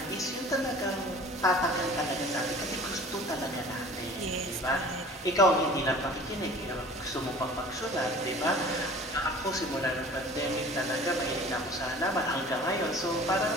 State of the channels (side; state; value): both; normal; correlation 0.45